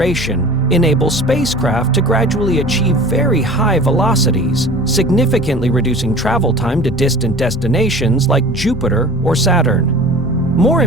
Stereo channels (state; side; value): normal; both; correlation 0.41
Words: enables spacecraft to gradually achieve very high velocities, significantly reducing travel time to distant destinations like Jupiter or Saturn. More